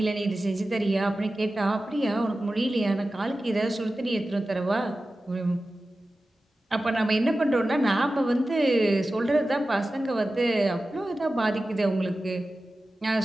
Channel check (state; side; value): normal; both; correlation 0.95